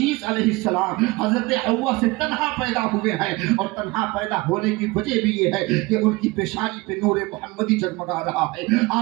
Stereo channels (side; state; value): left; quieter; 23.0 dB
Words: علیہ السلام حضرت حوا سے تنہا پیدا ہوئے ہیں، اور تنہا پیدا ہونے کی وجہ بھی یہ ہے کہ ان کی پیشانی پہ نور محمدی جگمگا رہا ہے۔